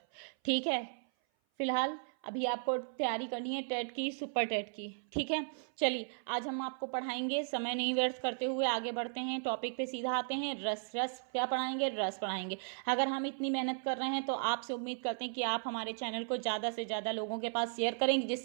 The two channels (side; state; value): left; silent; 54 dB below the other